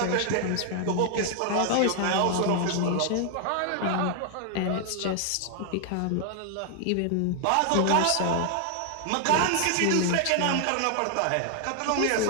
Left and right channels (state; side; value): different; both; correlation 0.00